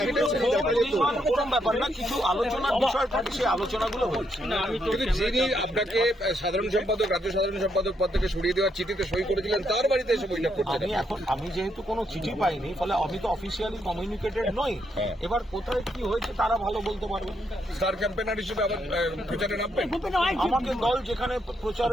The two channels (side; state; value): both; normal; correlation 0.77